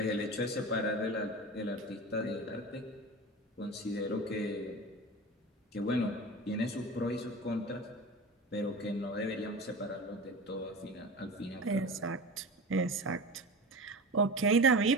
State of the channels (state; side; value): normal; both; correlation 0.31